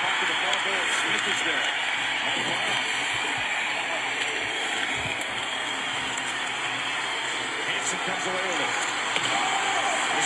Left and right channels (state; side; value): identical; both; correlation 1.00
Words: puck to the far goal. Smith is there. Hansen comes away with it.